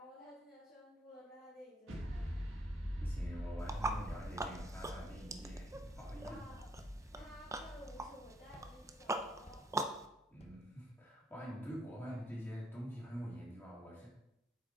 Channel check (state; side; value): normal; both; correlation 0.73